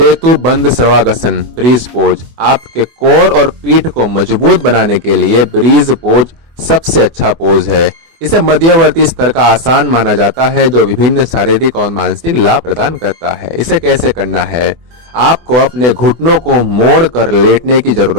बंद सर्वांगासन ब्रीज पोज आपके कोर और पीठ को मजबूत बनाने के लिए ब्रीज पोज सबसे अच्छा पोज है। इसे मध्यवर्ती स्तर का आसान माना जाता है जो विभिन्न शारीरिक और मानसिक लाभ प्रदान करता है। इसे कैसे करना है? आपको अपने घुटनों को मोड़ कर लेटने की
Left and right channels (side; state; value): left; late; 24 ms